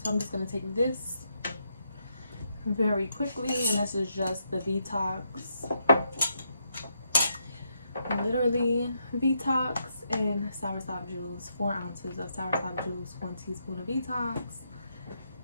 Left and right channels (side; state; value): both; inverted; correlation -0.79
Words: So I'm just going to take this very quickly. And this is just the detox. Literally detox and soursop juice. 4 ounces of soursop juice. 1 teaspoon of detox